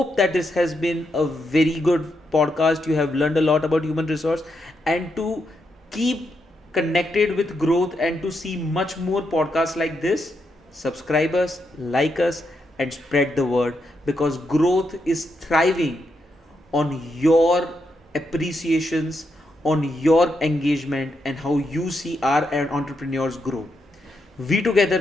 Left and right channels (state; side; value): normal; both; correlation 0.82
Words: that this has been a very good podcast. You have learned a lot about human resource, and to keep connected with growth and to see much more podcasts like this, subscribe us, like us, and spread the word, because growth is thriving on your appreciations, on your engagement, and how you see our entrepreneurs grow. We together